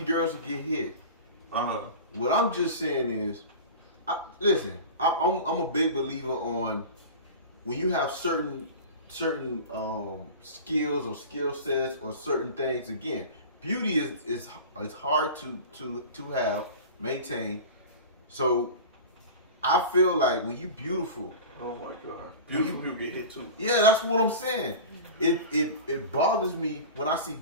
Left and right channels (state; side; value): inverted; both; correlation -0.33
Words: girls will get hit. Uh-huh. What I'm just saying is, listen, I'm a big believer on when you have certain skills or skill sets or certain things. Again, beauty is hard to have, maintain. So I feel like when you beautiful, oh my God, beautiful people get hit too. Yeah, that's what I'm saying. It bothers me when I see